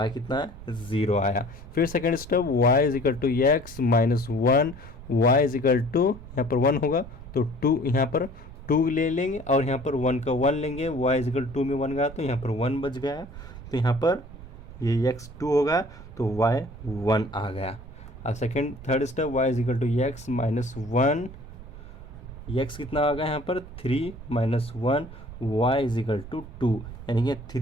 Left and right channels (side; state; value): right; noise; rumble, 15 dB below the sound